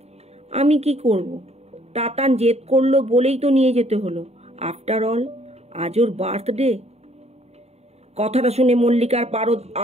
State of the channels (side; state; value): left; late; 0.31 ms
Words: আমি কি করব, তাতান জেদ করলো বলেই তো নিয়ে যেতে হলো। আফটার অল আজ ওর বার্থডে। কথাটা শুনে মল্লিকার পারদ